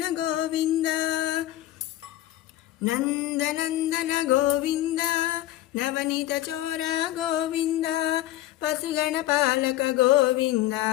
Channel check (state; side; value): quieter; right; 14.6 dB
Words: గోవింద, నందనందన గోవింద, నవనీత చోర గోవింద, పశుగణ పాలక గోవింద,